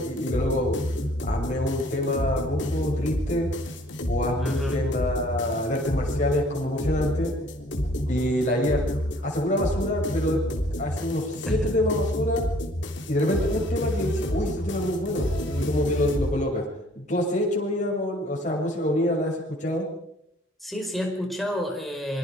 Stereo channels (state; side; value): normal; both; correlation 0.57